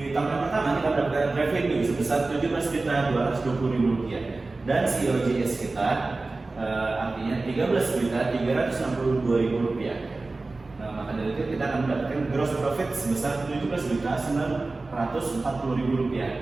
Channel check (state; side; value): quieter; left; 3.4 dB